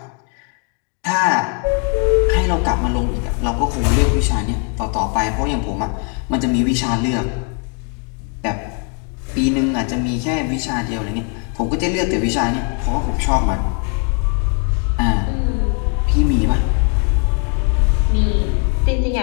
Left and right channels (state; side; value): quieter; right; 39.5 dB